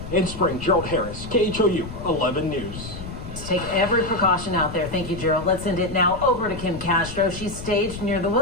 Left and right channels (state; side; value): noise; left; rumble, 11 dB below the sound